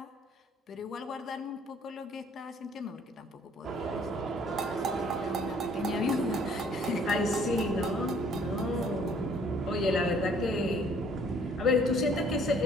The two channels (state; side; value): normal; both; correlation 0.59